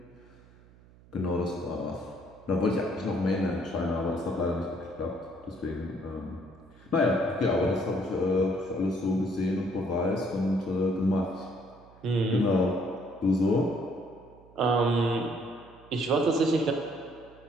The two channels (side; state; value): right; noise; hum, 25 dB below the sound